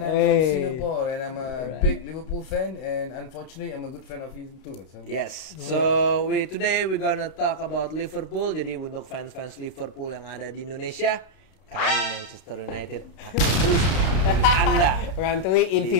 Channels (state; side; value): late; right; 32 ms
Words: I'm from Singapore and I'm a big Liverpool fan and unfortunately I'm a good fan of him too. So. Yes. So today we're gonna talk about Liverpool. Jadi untuk fans-fans Liverpool yang ada di Indonesia, kami Manchester United Anda Rantui in